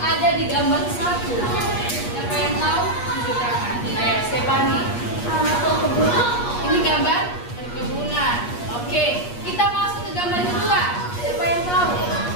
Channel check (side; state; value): right; late; 8.4 ms